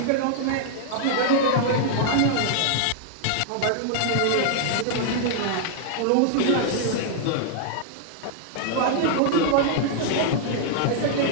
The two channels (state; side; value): different; both; correlation -0.01